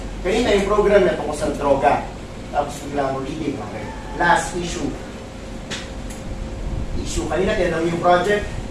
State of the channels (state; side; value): identical; both; correlation 1.00